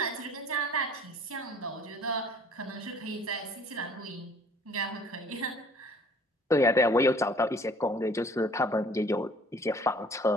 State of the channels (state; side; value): normal; both; correlation 0.54